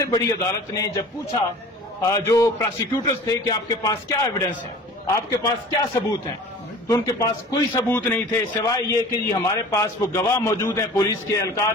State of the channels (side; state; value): both; normal; correlation 0.43